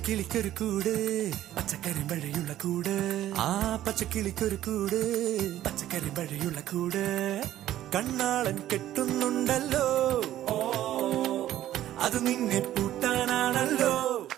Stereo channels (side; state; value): left; quieter; 13.1 dB